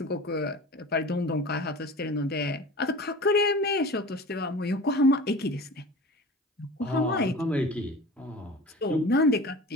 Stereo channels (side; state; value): both; normal; correlation 0.37